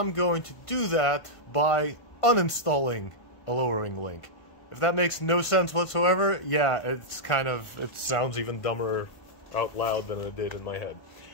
going to do that by uninstalling a lowering link. If that makes no sense whatsoever, yeah, it sounds even dumber out loud than it did in my head.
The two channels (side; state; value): right; late; 1.5 ms